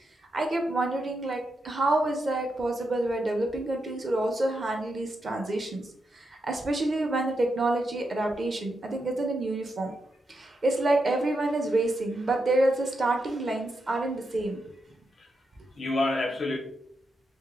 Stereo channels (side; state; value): both; normal; correlation 0.84